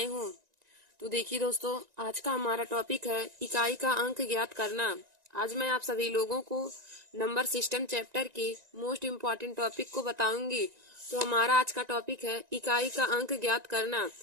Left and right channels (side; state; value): left; late; 1.9 ms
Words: हूँ। तो देखिए दोस्तों, आज का हमारा टॉपिक है इकाई का अंक ज्ञात करना। आज मैं आप सभी लोगों को नंबर सिस्टम चैप्टर के मोस्ट इम्पॉर्टेंट टॉपिक को बताऊंगी। तो हमारा आज का टॉपिक है इकाई का अंक ज्ञात करना।